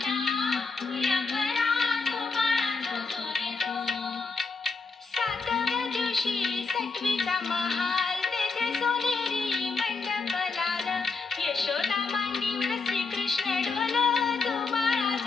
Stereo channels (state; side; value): quieter; right; 4.3 dB